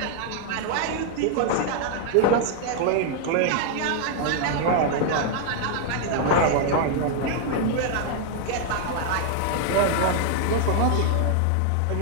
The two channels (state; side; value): different; both; correlation 0.00